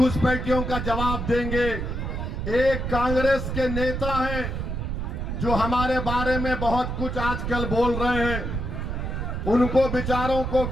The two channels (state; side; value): noise; right; rumble, 3 dB below the sound